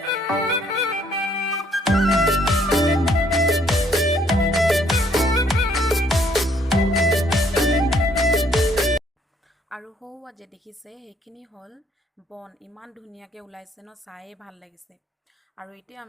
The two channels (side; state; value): both; normal; correlation 0.66